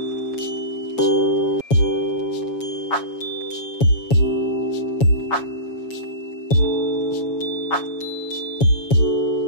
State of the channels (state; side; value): late; right; 7.2 ms